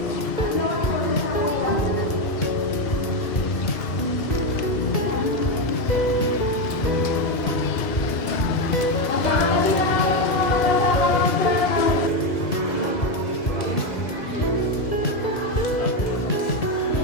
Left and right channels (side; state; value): right; late; 2.0 ms